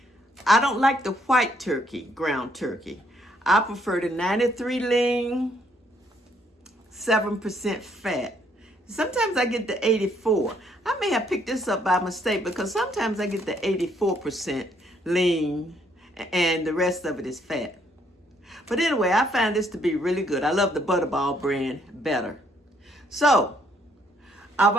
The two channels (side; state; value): both; normal; correlation 0.69